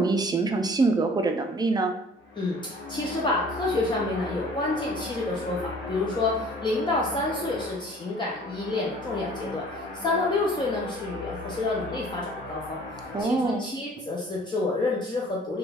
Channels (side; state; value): both; normal; correlation 0.51